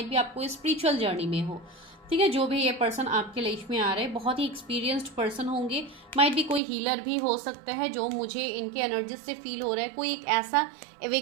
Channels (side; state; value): left; drops out; at 6.6 s